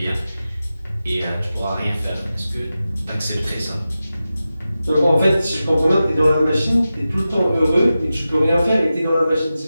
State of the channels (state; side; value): inverted; both; correlation -0.93